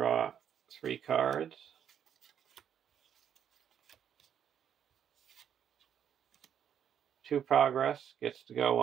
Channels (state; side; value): quieter; left; 8.8 dB